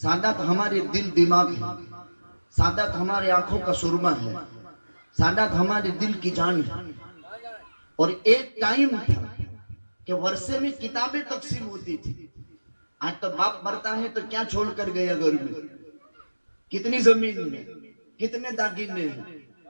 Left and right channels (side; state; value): both; inverted; correlation -1.00